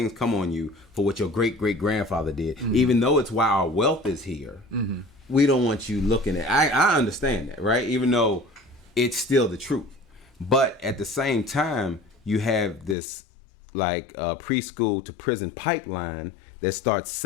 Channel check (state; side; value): drops out; right; at 13.0 s